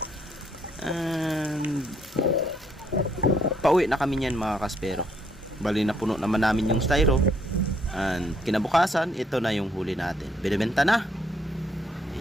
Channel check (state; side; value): normal; both; correlation 0.70